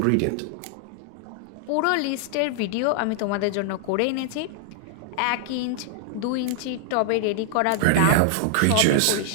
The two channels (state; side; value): different; both; correlation -0.01